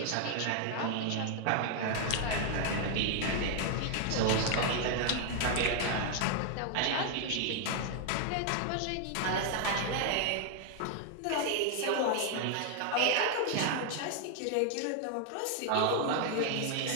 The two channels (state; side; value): different; both; correlation 0.00